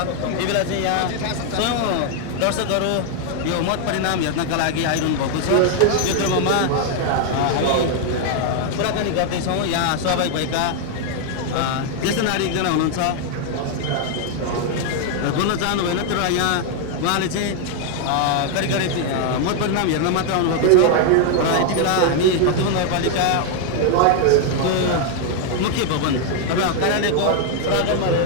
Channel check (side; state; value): both; different; correlation 0.00